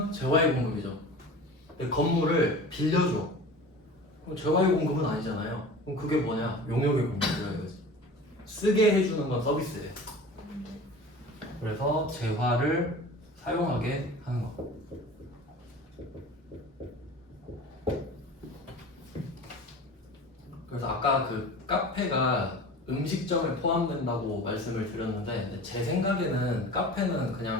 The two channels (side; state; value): both; normal; correlation 0.38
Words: 재화의 공급이죠. 근데 건물을 빌려줘. 그럼 재화의 공급은 아니잖아요. 그럼 그게 뭐냐? 용역의 공급이라 이거지. 쓰게 해주는 건 서비스예요. 그래서 재화를 사용하게 하는 거. 그래서 아까 그 카페가 음식점에 포함된다고 말씀을 드렸는데 제 생각에는 카페는